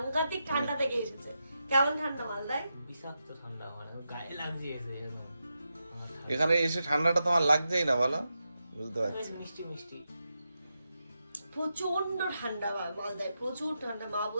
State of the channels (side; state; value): both; inverted; correlation -0.87